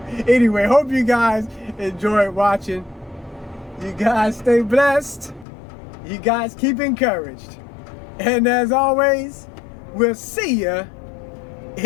Anyway, hope you guys enjoyed watching. You guys stay blessed. You guys keep encouraged. And as always, we'll see you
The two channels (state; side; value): drops out; right; at 5.5 s